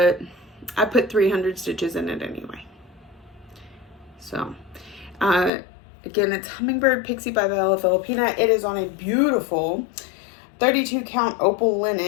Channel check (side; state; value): right; drops out; at 5.5 s